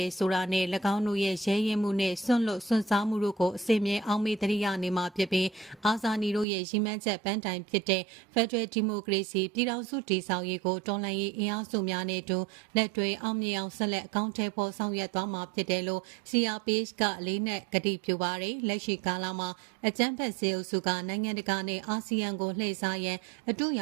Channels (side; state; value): left; drops out; at 6.5 s